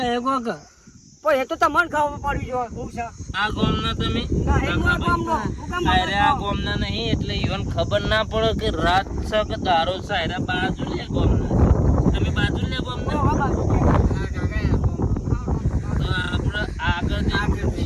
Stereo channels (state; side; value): identical; both; correlation 1.00